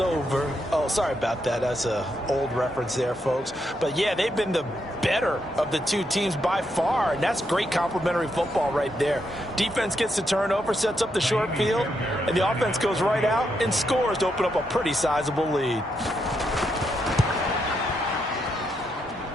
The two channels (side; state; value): both; normal; correlation 0.80